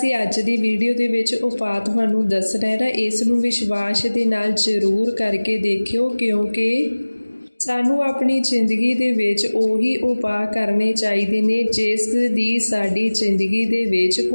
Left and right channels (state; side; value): inverted; both; correlation -1.00